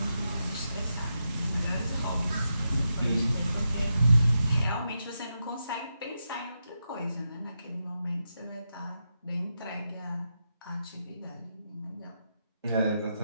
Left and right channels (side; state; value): both; inverted; correlation -0.86